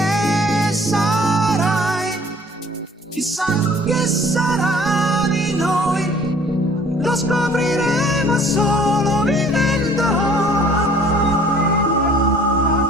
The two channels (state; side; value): normal; both; correlation 0.54